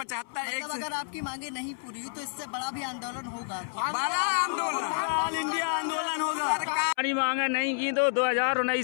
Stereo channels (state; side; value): silent; right; 58 dB below the other